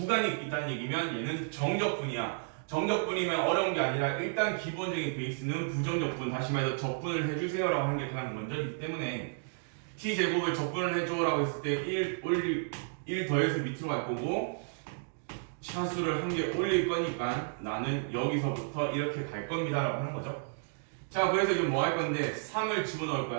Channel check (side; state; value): left; silent; digital silence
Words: 있다는 얘기면 얘는 정적분이야. 정적분이면 어려운 게 아니라 일단 기본적인 베이스는 부정적분, 다시 말해서 적분을 해주세요라고 하는 게 가장 먼저이기 때문에 t제곱을 적분을 해줘라고 했을 때 1 더해서 밑으로 갈 거고 차수를 한 개 올릴 거니까 나는 여기서부터 이렇게 갈 겁니다 라고 하는 거죠. 자, 그래서 지금 뭐 할 건데 3을 집어넣을